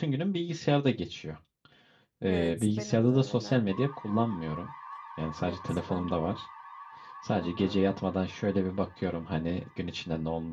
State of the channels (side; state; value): both; identical; correlation 1.00